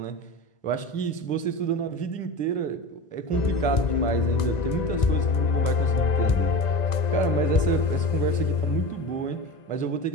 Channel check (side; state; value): right; late; 1.9 ms